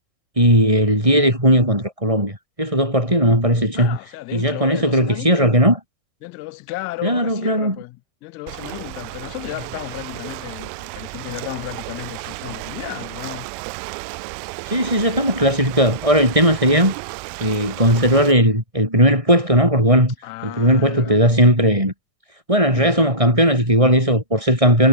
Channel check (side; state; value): left; late; 1.6 ms